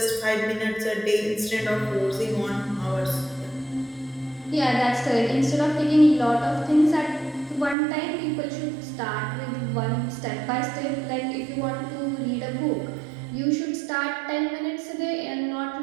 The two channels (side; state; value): left; drops out; at 7.8 s